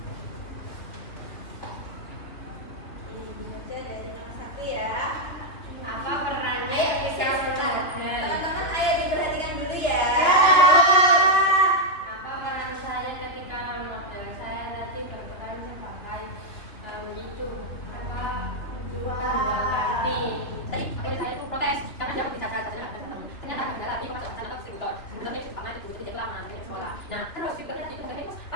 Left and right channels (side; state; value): right; late; 3.2 ms